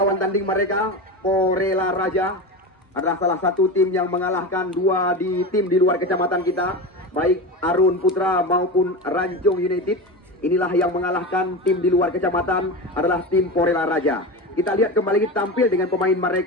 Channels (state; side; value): normal; both; correlation 0.24